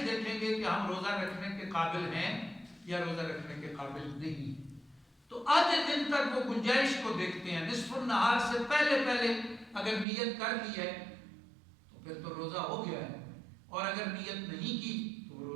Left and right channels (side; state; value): left; drops out; at 10.1 s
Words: دیکھیں گے کہ ہم روزہ رکھنے کے قابل ہیں یا روزہ رکھنے کے قابل نہیں. تو آدھے دن تک وہ گنجائش کو دیکھتے ہیں. نصف النہار سے پہلے اگر نیت کر لی ہے تو پھر تو روزہ ہو گیا ہے، اور اگر نیت نہیں کی تو وہ